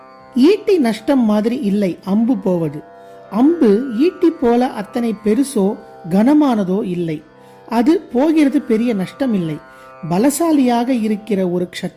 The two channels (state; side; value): identical; both; correlation 1.00